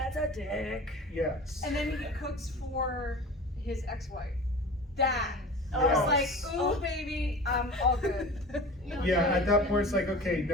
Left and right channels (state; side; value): normal; both; correlation 0.37